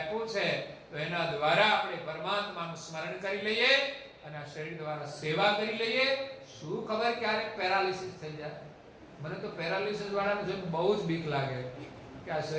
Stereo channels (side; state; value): both; identical; correlation 1.00